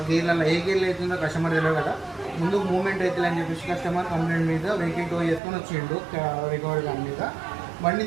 గేర్లలో ఏ గేర్లు అవుతుందో కస్టమర్ తెలియదు కదా. ముందు మూవ్మెంట్ అవుతుంది అని చెప్పేసి కస్టమర్ కంప్లైంట్ మీద వెహికల్ టో చేసుకొని వచ్చిండు రికవరీ దాని మీద. బండి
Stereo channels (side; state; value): left; drops out; at 5.4 s